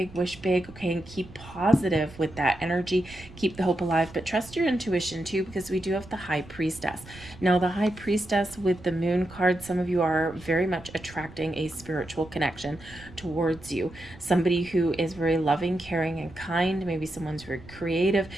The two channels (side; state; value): right; noise; rumble, 19 dB below the sound